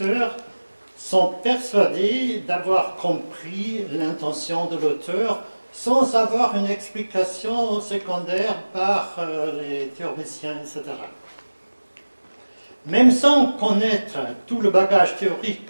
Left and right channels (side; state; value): both; inverted; correlation -1.00